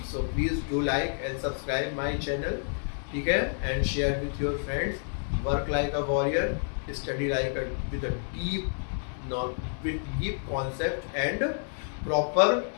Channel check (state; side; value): silent; right; digital silence